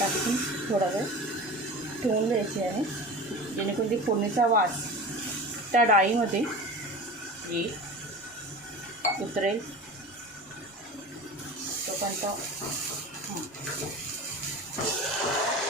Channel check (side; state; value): both; normal; correlation 0.34